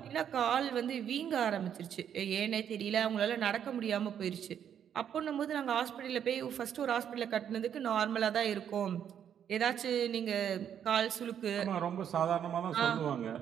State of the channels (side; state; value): left; quieter; 9.0 dB